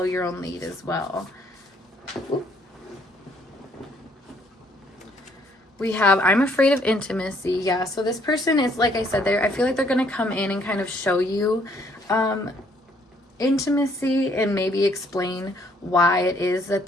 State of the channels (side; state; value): both; normal; correlation 0.65